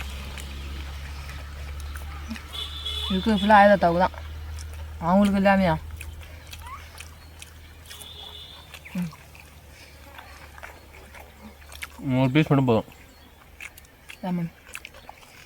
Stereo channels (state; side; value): identical; both; correlation 1.00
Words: இருக்குது ஃபுல்லாக ஆயா தாத்தாவுக்கு தான், அவங்களுக்கு இல்லாமையா. ஒரு பீஸ் மட்டும் போதும். லெமன்